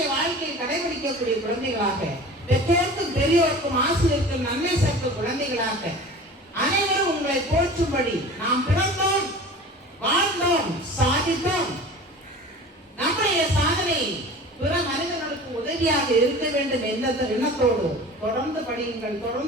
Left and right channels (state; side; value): normal; both; correlation 0.39